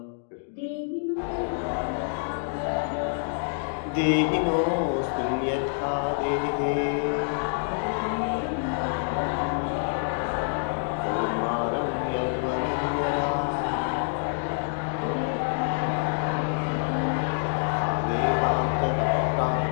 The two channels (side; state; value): right; silent; digital silence